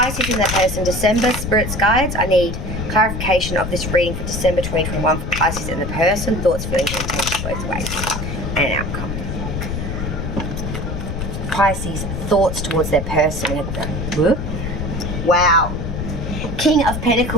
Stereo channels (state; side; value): noise; left; rumble, 4 dB below the sound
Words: in their person, December, Spirit's Guides. I need clarification of this reading for December 2021 for Pisces in the person. Thoughts, feelings, and intentions both ways. And an outcome. Pisces, thoughts towards their person. Whoop. Wow. King of